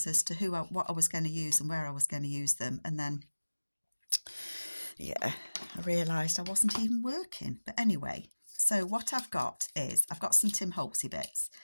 as to what I was going to use and where I was going to use them, and then yeah, I realised I wasn't even working. But anyway, so what I've got is I've got some Tim Holtzy bits.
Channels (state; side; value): inverted; both; correlation -1.00